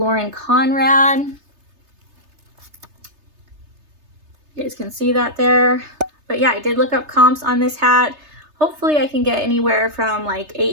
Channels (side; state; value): left; late; 3.3 ms